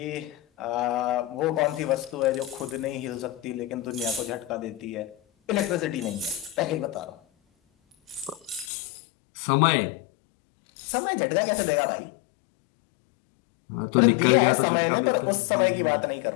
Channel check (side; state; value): right; drops out; at 8.7 s